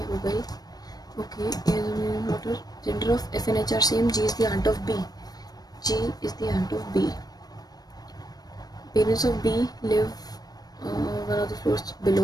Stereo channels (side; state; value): right; late; 0.19 ms